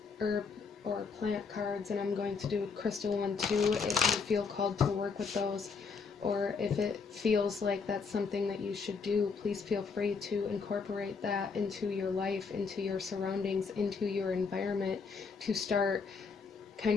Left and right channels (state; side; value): quieter; right; 5.1 dB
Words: herb or plant cards, and I'm going to do a crystal one too if you feel called to work with those, or if it feels like that's something that you should do, please feel free to incorporate that into your life, into your surroundings, into your environment, to start